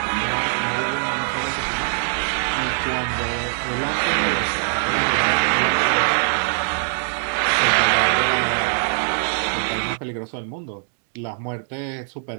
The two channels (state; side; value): silent; left; digital silence